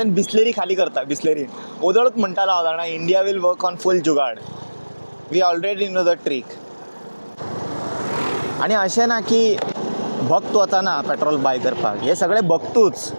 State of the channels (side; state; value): both; inverted; correlation -1.00